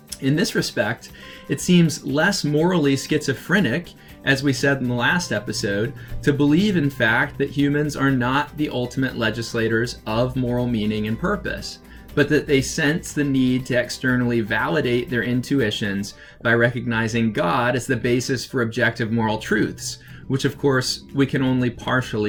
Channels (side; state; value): both; identical; correlation 1.00